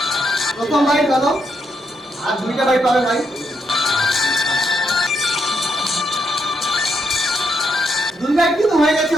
প্রথম বাইট হলো, আর 2টা বাইট পাবে ভাই। 2 বাইট কিন্তু হয়ে গেছে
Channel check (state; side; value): normal; both; correlation 0.78